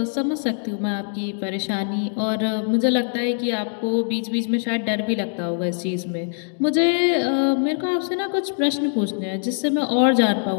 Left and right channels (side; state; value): right; silent; digital silence